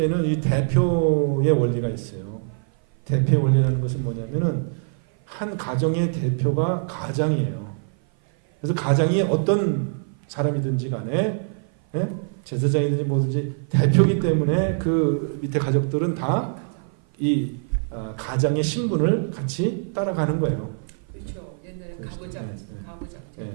이 대표의 원리가 있어요. 대표의 원리라는 것은 뭐냐면은 한 가정의 대표가 가장이에요. 그래서 가장이 어떤 사람이든지 간에 제사장이든지 뭐든지 대표이기 때문에 그 밑에 가족들은 다 이 가장의 신분을 같이 따라가는 거예요. 그렇죠. 옛날에 가부장.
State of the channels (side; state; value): left; silent; 56 dB below the other